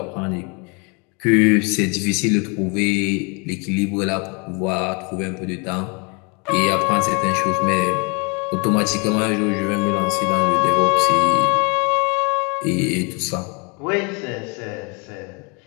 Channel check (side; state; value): right; quieter; 32.3 dB